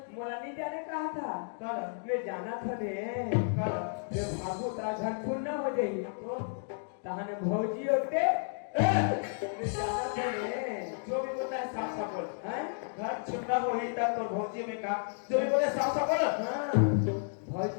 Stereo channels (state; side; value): silent; right; digital silence